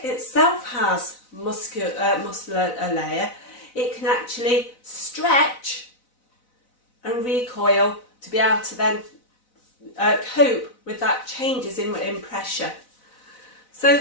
itself has muscular layer, it can actually stretch and recoil to be able to then cope with that changes in pressure. So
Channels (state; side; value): late; right; 4.0 ms